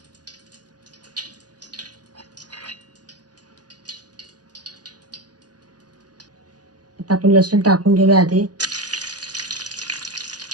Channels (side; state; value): left; late; 0.69 ms